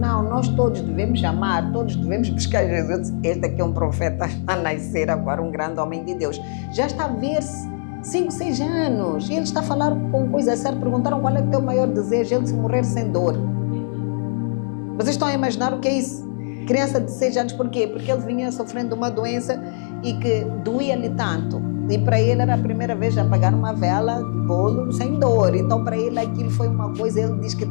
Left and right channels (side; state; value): right; silent; digital silence